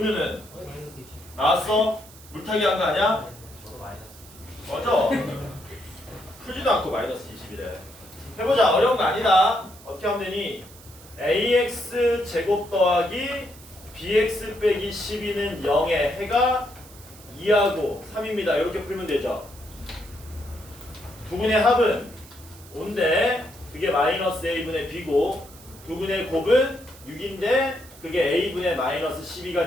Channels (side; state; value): right; noise; hiss, 21 dB below the sound